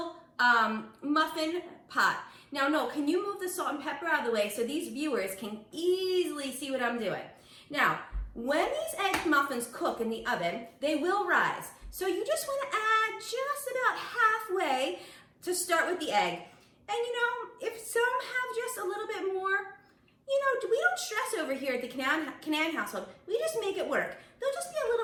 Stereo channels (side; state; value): both; identical; correlation 1.00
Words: muffin pot. Now, Noel, can you move the salt and pepper out of the way so these viewers can easily see what I'm doing? Now, when these egg muffins cook in the oven, they will rise. So you just want to add just about halfway to start with the egg. And you know, if some have just a little bit more, you know, we don't stress over here at the Canan household. We just make it work. They'll just be a